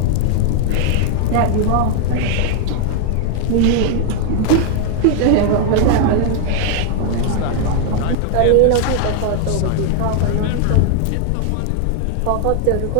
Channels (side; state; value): both; different; correlation 0.00